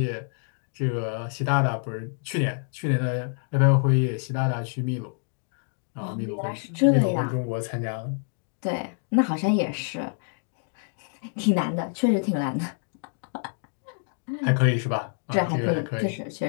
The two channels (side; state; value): right; silent; digital silence